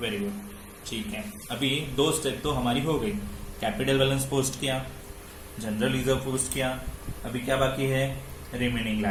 वेरी गुड, ठीक है। अभी 2 स्टेप तो हमारी हो गई, कैपिटल बैलेंस पोस्ट किया, जनरल रिजर्व पोस्ट किया। अभी क्या बाकी है, रिमेनिंग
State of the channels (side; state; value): both; identical; correlation 1.00